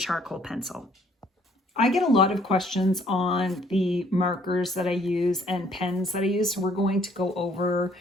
pencil. I get a lot of questions on the markers that I use and pens that I use, so we're going to go over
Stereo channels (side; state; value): both; normal; correlation 0.62